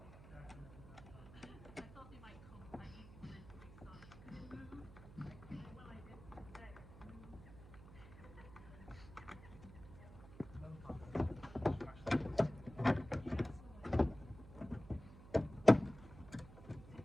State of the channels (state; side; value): noise; right; hum, 16 dB below the sound